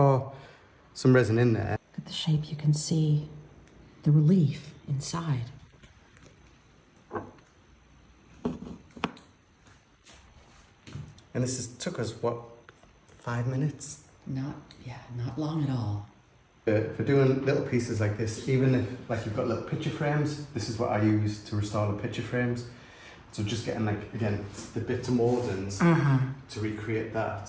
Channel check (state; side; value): identical; both; correlation 1.00